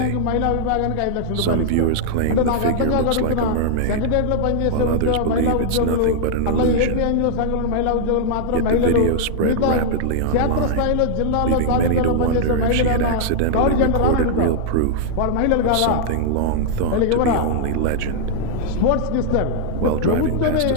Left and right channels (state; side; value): different; both; correlation -0.01